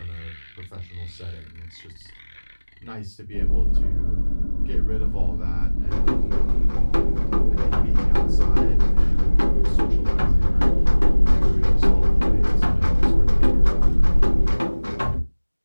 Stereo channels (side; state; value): both; inverted; correlation -1.00